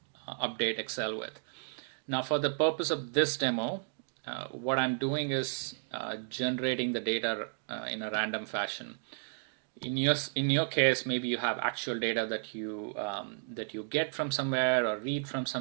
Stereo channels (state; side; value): silent; left; digital silence